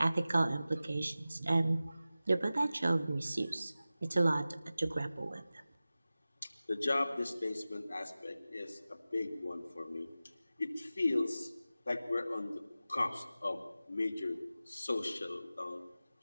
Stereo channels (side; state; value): both; inverted; correlation -0.96